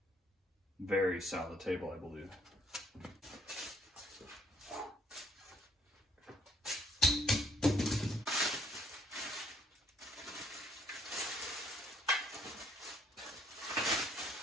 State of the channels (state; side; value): normal; both; correlation 0.66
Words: very solid table, I believe.